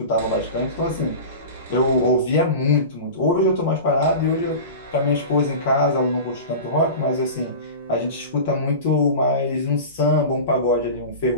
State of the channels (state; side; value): inverted; both; correlation -0.30